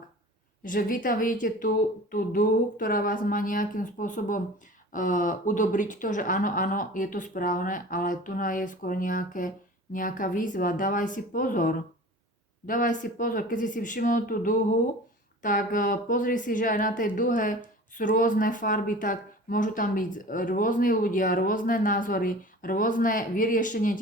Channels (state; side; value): normal; both; correlation 0.40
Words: Že vy tam vidíte tú dúhu, ktorá vás má nejakým spôsobom udobriť to, že áno, je to správne, ale tu je skôr nejaká výzva. Dávaj si pozor. Keď si všimol tú dúhu, tak pozri si, že aj na tej dúhe sú rôzne farby, tak môžu tam byť rôzni ľudia, rôzne názory, rôzne vyriešenie